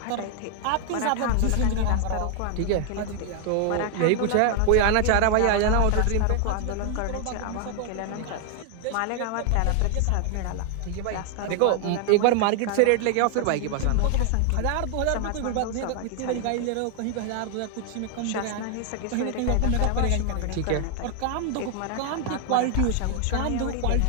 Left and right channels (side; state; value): both; different; correlation 0.00